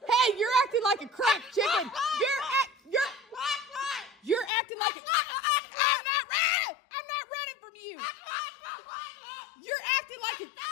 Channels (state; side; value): drops out; right; at 4.5 s